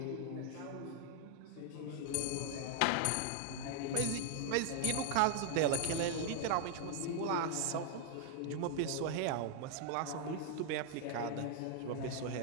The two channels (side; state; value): both; different; correlation 0.00